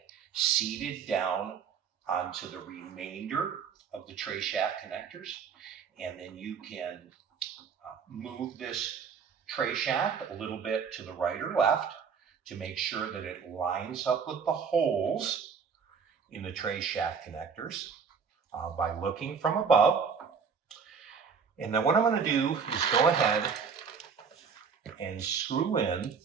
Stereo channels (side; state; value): left; quieter; 6.2 dB